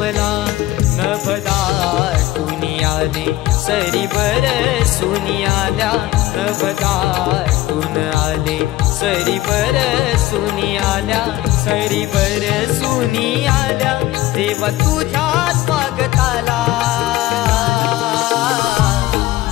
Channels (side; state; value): right; quieter; 16.0 dB